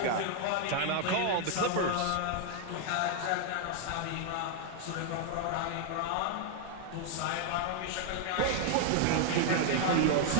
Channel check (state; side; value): different; both; correlation 0.00